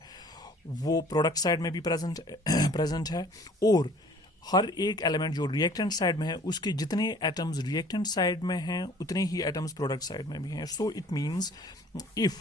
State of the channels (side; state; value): both; normal; correlation 0.52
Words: वो प्रोडक्ट साइड में भी प्रेजेंट है, और हर एक एलिमेंट जो रिएक्टेंट साइड में है उसके जितने एटम्स रिएक्टेंट साइड में हैं उतने ही एटम्स प्रोडक्ट साइड में भी हैं। So it means